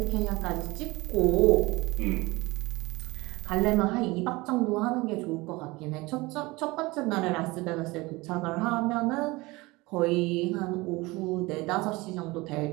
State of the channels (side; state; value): left; quieter; 22.3 dB